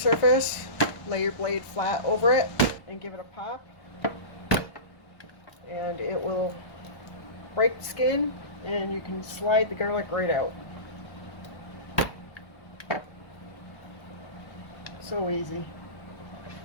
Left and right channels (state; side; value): late; right; 1.2 ms